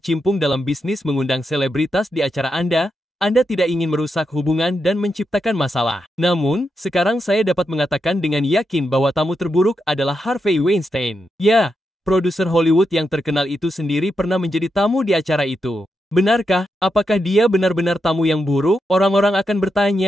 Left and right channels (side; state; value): both; normal; correlation 0.85